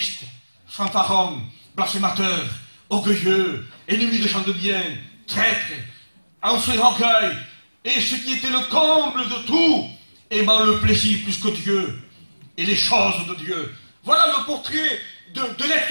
fanfarons, blasphémateurs, orgueilleux, ennemis des gens de bien, traîtres, enflés d'orgueil, et ce qui était le comble de tout, aimant le plaisir plus que Dieu, et les choses de Dieu. Voilà le portrait de l'être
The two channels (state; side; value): inverted; both; correlation -1.00